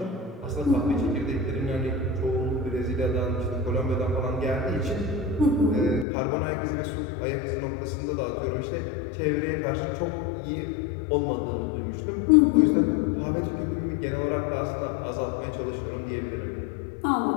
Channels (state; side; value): drops out; right; at 6.1 s